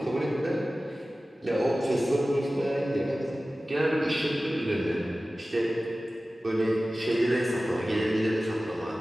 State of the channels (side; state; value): both; normal; correlation 0.96